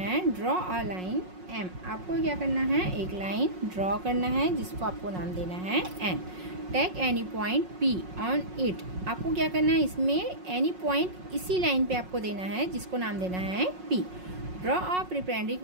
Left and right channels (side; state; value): left; late; 5.5 ms